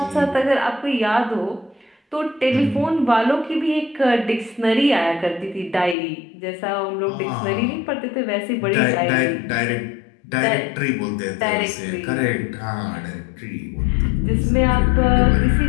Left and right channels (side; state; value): right; drops out; at 6.0 s